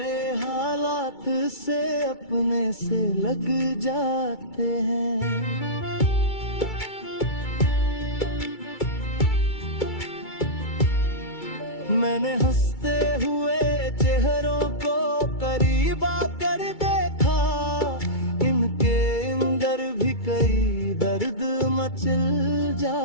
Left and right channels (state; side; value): late; right; 2.3 ms